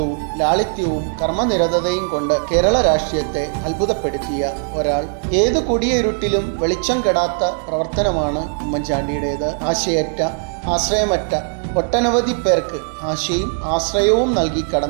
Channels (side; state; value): left; silent; digital silence